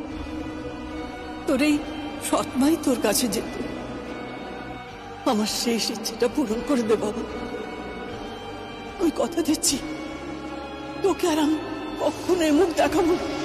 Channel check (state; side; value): identical; both; correlation 1.00